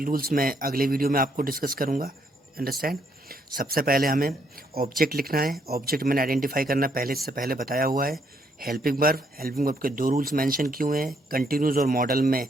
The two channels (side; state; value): both; normal; correlation 0.72